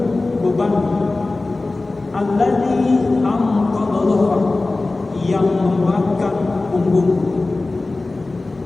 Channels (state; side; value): quieter; right; 3.2 dB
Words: beban alladzi anqadha dhahrak, yang memberatkan punggung.